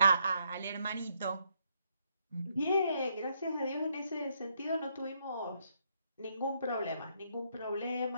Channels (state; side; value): inverted; both; correlation -0.74